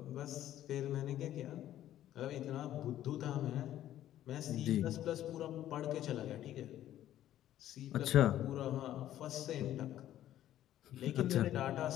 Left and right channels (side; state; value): right; quieter; 12.5 dB